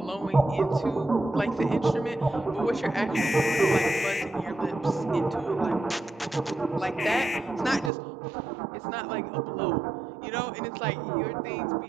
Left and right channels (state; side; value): drops out; left; at 7.9 s